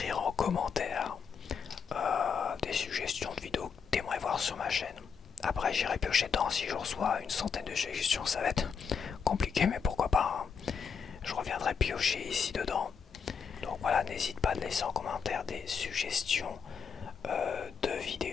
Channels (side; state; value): right; quieter; 6.3 dB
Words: en commentaire des suggestions de vidéos que tu aimerais voir sur ma chaîne. Après, j'irai piocher dedans si je reçois une centaine de suggestions. Ça va être compliqué, mais pourquoi pas, hein. Je reviendrai piocher ici dedans. Donc voilà, n'hésite pas à laisser en commentaire des suggestions de